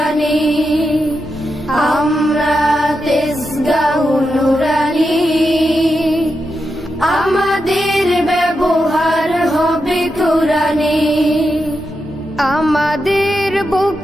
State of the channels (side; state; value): both; normal; correlation 0.87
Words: আমরা তেজগাহ নূরানি, আমাদের ব্যবহার হবে কুরআনি। আমাদের